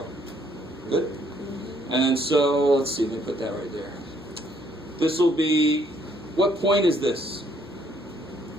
Good? And then so, let's see, let me put that right there. This will be, what point is this?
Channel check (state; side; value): normal; both; correlation 0.67